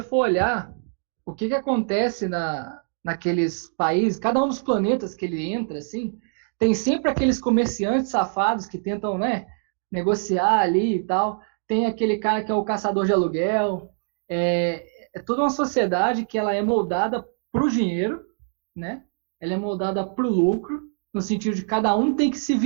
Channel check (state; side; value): silent; left; 63 dB below the other